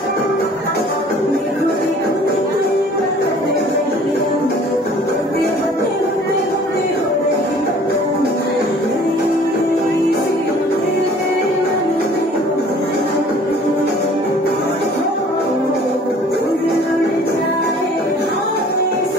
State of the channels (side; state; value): both; normal; correlation 0.51